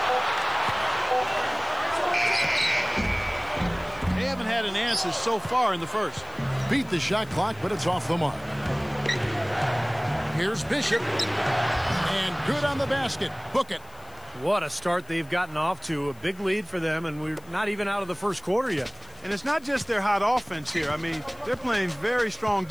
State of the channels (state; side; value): noise; left; hiss, 26 dB below the sound